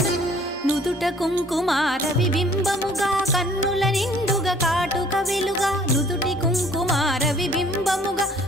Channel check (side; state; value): both; normal; correlation 0.56